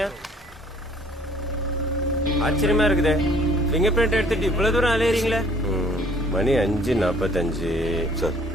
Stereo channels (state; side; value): normal; both; correlation 0.58